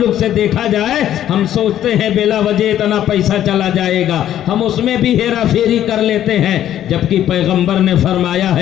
سے دیکھا جائے ہم سوچتے ہیں بلا وجہ اتنا پیسہ چلا جائے گا، ہم اس میں بھی ہیرا پھیری کر لیتے ہیں، جبکہ پیغمبر نے فرمایا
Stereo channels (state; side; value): quieter; right; 11.5 dB